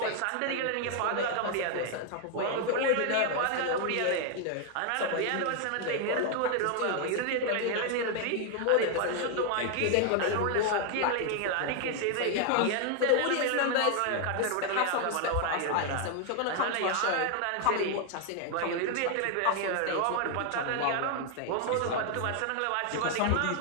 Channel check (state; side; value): different; both; correlation 0.00